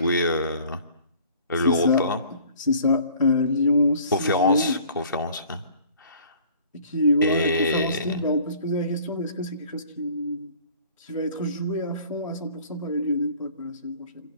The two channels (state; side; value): inverted; both; correlation -0.52